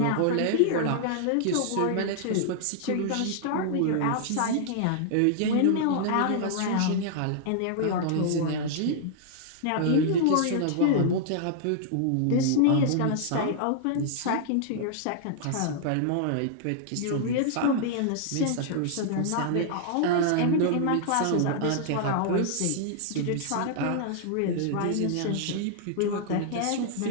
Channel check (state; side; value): different; both; correlation -0.01